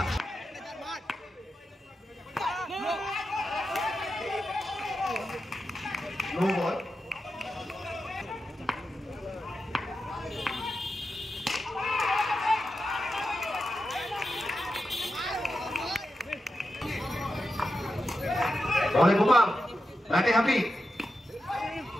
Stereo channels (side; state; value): both; normal; correlation 0.89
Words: নো বল বলে গোপাল ব্যাটে হ্যাপি